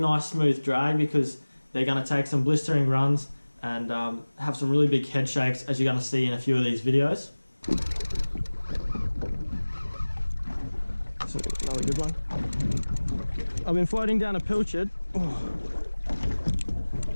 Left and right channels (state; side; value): inverted; both; correlation -1.00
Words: smooth drag, because they're going to take some blistering runs and have some really big head shakes, as you're going to see in a few of these videos. So another good one. I've been floating down a pilchard.